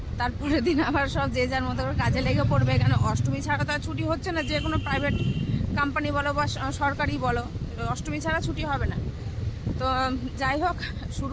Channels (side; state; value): both; identical; correlation 1.00